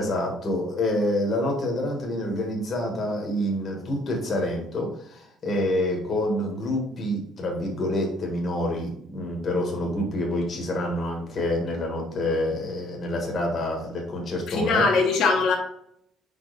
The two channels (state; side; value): normal; both; correlation 0.60